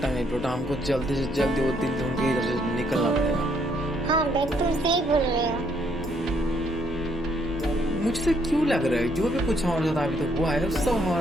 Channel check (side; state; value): both; normal; correlation 0.70